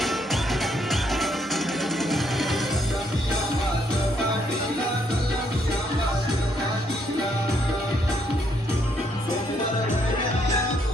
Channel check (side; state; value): both; normal; correlation 0.72